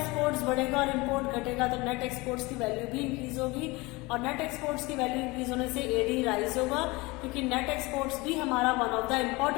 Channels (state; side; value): quieter; right; 23.6 dB